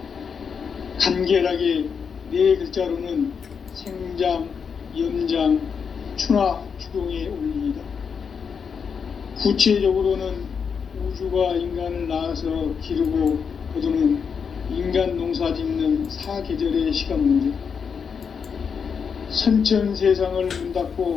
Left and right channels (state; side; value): quieter; right; 6.3 dB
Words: 간결하게 네 글자로는 생장, 연장, 추나 추동에 올리이다. 구체적으로는 우주가 인간을 낳아서 기르고 거두는 인간 농사 짓는 사계절의 시간 문제, 선천 세상을 문